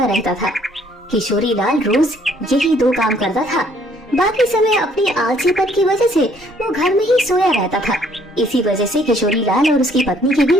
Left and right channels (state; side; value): normal; both; correlation 0.63